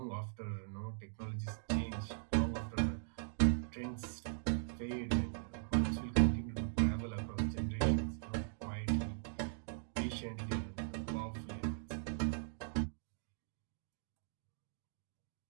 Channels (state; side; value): silent; left; digital silence